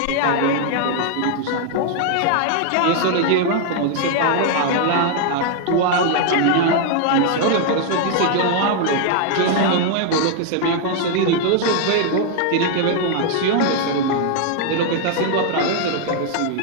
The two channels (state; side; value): different; both; correlation 0.00